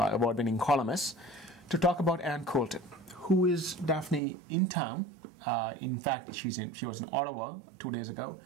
our award-winning columnists, to talk about Ann Coulter. Who is Daphne in town? In fact, she was in Ottawa 2 days ago,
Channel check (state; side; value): drops out; left; at 4.2 s